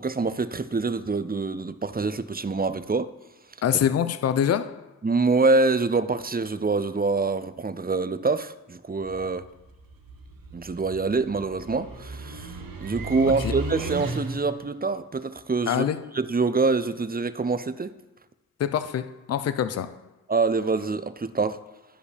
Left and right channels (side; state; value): both; normal; correlation 0.30